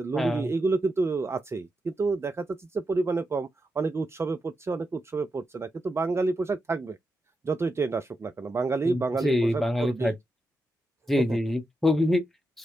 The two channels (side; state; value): both; normal; correlation 0.87